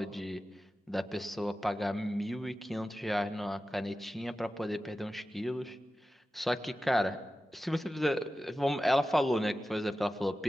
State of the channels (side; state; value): both; normal; correlation 0.93